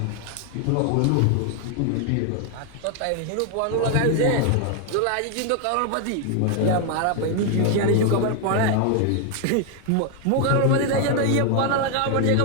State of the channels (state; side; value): different; both; correlation 0.00